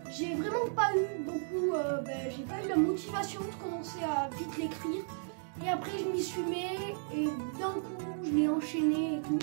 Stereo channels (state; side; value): silent; left; digital silence